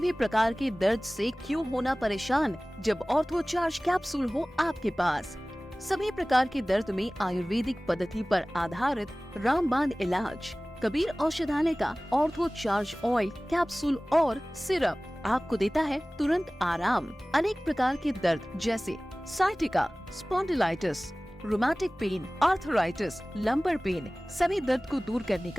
प्रकार के दर्द से क्यों होना परेशान, जब ऑर्थो चार्ज कैप्सूल हो आपके पास। सभी प्रकार के दर्द में आयुर्वेदिक पद्धति पर आधारित रामबाण इलाज। कबीर औषधालय का ऑर्थो चार्ज ऑयल, कैप्सूल और सिरप आपको देता है तुरंत आराम। अनेक प्रकार के दर्द जैसे sciatica, spondylitis, rheumatic pain, arthritis, lumbar pain, सभी दर्द को दूर करने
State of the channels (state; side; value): normal; both; correlation 0.98